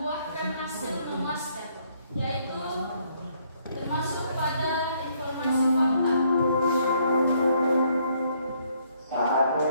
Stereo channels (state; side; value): inverted; both; correlation -0.68